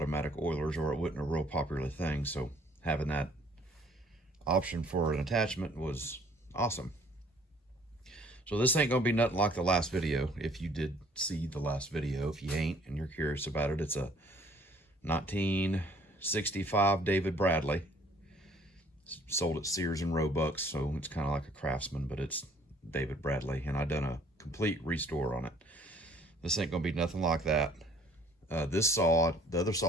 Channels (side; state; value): both; normal; correlation 0.57